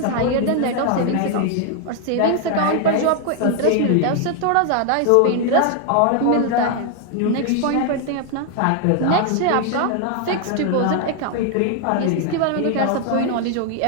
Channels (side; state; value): both; different; correlation 0.00